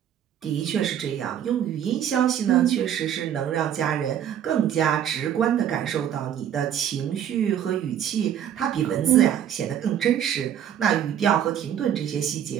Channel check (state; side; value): quieter; left; 9.8 dB